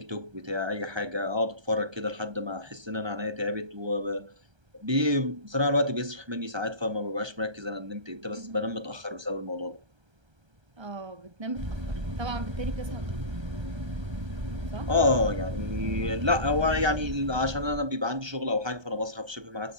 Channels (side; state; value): left; late; 1.3 ms